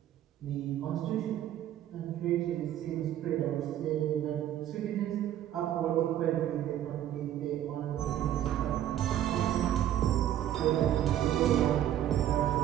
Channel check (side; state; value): left; quieter; 11.7 dB